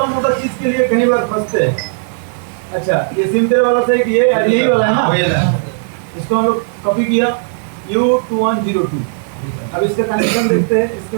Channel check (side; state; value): left; silent; digital silence